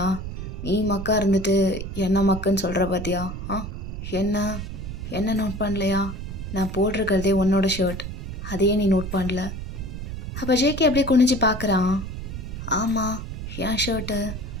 நீ மக்கா இருந்துட்டு என்ன மக்குன்னு சொல்கிற பார்த்தியா? என்ன நோட் பண்ணலையா? நான் போட்டிருக்கிறதே உன்னோட ஷர்ட், அதையே நீ நோட் பண்ணல. அப்போ ஜேகே அப்படியே குனிஞ்சு பார்க்குறான். ஆமாம், என் ஷர்ட்டு.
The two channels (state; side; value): noise; right; rumble, 7 dB below the sound